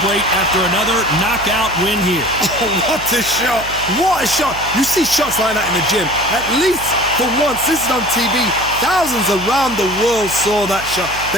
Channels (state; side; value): noise; right; hum, 14 dB below the sound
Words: after another knockout win here. Oh, what a shot! What a shot! You see shots like that in the gym. At least for once, this is on TV. Thousands around the world saw that shot.